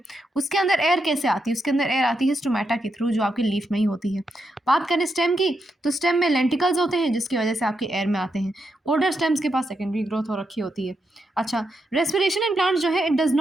उसके अंदर एयर कैसे आती है? उसके अंदर एयर आती है स्टोमेटा के थ्रू, जो आपकी लीफ में ही होती है। बात करें स्टेम की, तो स्टेम में लेंटिकल्स होते हैं जिसकी वजह से आपके एयर में आते हैं। ओल्डर स्टेम्स के पास सेकेंडरी ग्रोथ हो रखी होती है। अच्छा, रेस्पिरेशन इन प्लांट्स जो है it does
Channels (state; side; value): normal; both; correlation 0.83